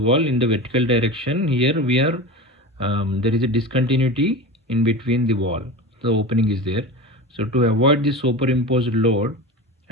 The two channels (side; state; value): both; normal; correlation 0.28